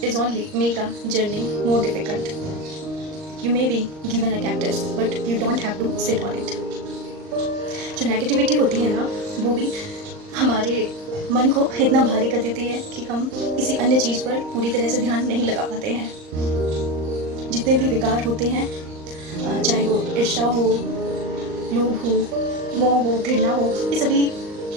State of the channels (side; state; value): left; late; 39 ms